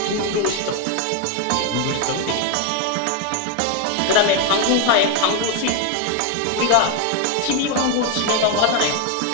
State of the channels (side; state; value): both; different; correlation 0.01